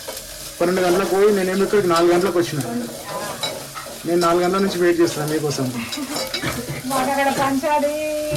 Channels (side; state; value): both; identical; correlation 1.00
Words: 12 గంటలకు పోయి నేనేమి ఇక్కడికి 4 గంటలకు వచ్చిన. నేను 4 గంటల నుంచి వెయిట్ చేస్తాను మీకోసం. మాకు అక్కడ పంచాలి